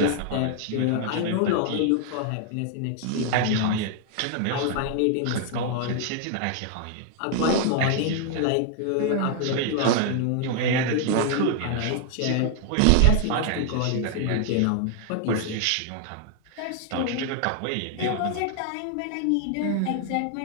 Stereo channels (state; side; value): different; both; correlation 0.00